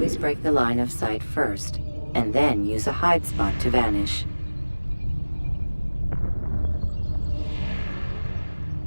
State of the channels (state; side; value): inverted; both; correlation -1.00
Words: break the line of sight first, and then use a hide spot to vanish.